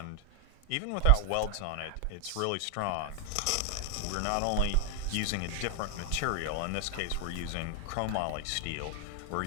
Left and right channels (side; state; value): both; different; correlation 0.00